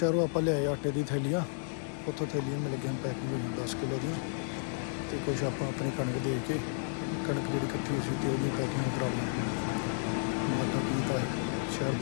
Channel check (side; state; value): right; silent; digital silence